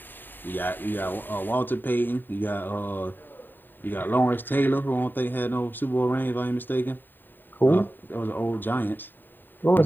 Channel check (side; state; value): right; late; 0.092 ms